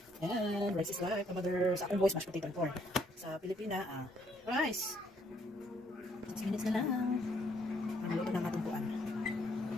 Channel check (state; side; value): normal; both; correlation 0.68